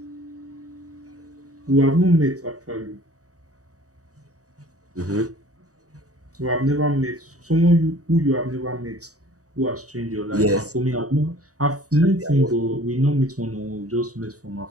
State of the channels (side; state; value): left; late; 0.66 ms